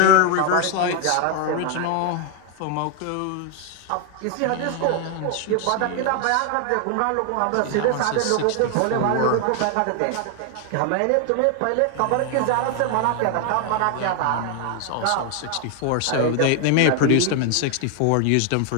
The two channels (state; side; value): different; both; correlation 0.00